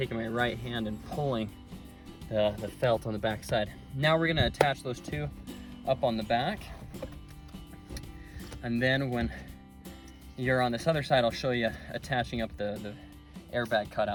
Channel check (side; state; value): both; identical; correlation 1.00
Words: my right hand and pulling the felt on the back side. Now we're gonna attach those two up on the back. And then when you're on this other side, I'll show you attaching up the airbag